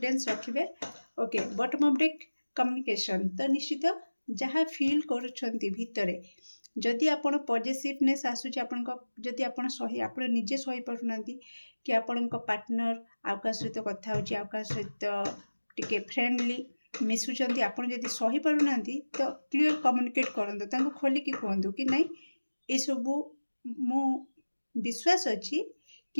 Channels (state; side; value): inverted; both; correlation -1.00